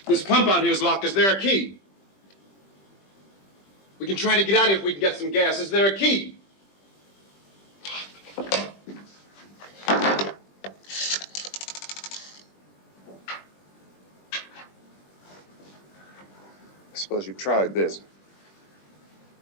This pump out here is locked. Is there a key? We can try to get out here if we can get some gas. Is there a key? I suppose you've tried this.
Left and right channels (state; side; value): late; right; 20 ms